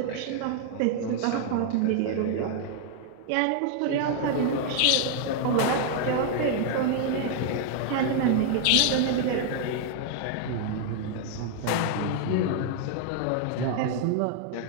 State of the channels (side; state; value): both; different; correlation 0.00